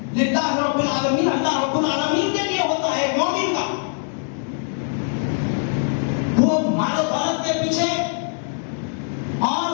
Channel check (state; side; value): silent; right; digital silence